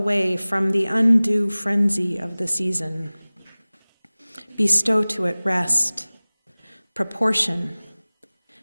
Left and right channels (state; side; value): inverted; both; correlation -0.99